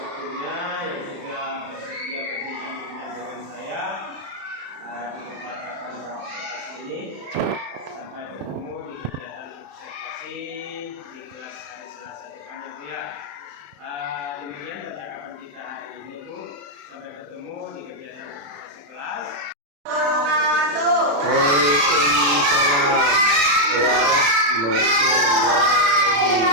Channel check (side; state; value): left; late; 35 ms